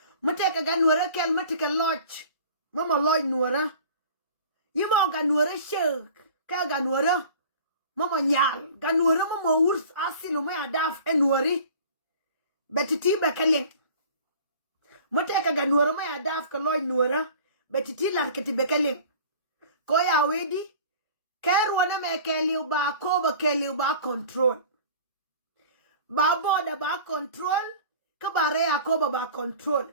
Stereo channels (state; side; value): inverted; both; correlation -0.44